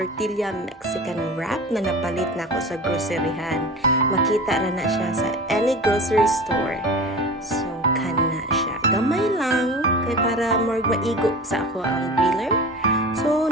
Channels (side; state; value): both; normal; correlation 0.34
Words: Mexican wrap na napalit na ako sa groceryhan. Makita ra na siya sa any grocery store. So, kana siya. Gamay lang kay para more maigo sa ako ang griller. So,